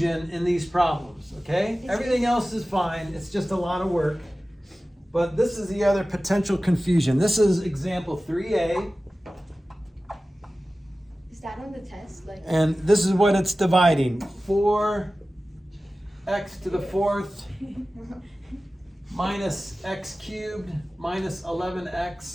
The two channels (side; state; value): both; normal; correlation 0.96